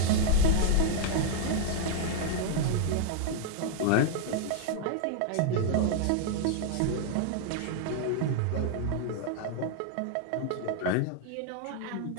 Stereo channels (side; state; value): both; different; correlation 0.00